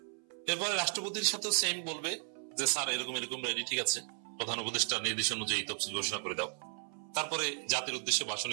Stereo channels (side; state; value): left; silent; 54 dB below the other